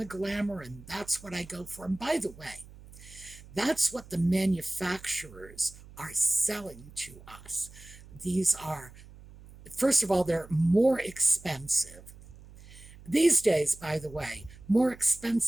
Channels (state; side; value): noise; right; hum, 20 dB below the sound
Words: glamour, and that's what I go for. And by the way, that's what the manufacturers are selling to us. These are, first of all, they're more expensive. These days, by the way, more